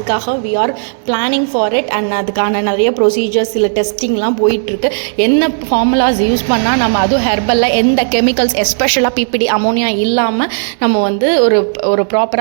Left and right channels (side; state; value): left; silent; 67 dB below the other